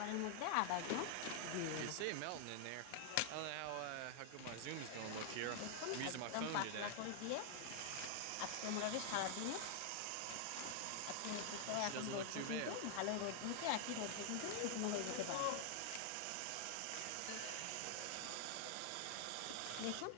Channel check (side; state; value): both; different; correlation 0.00